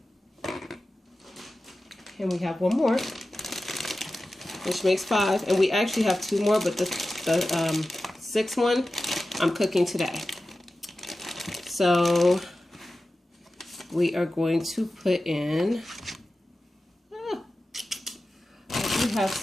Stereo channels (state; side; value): normal; both; correlation 0.94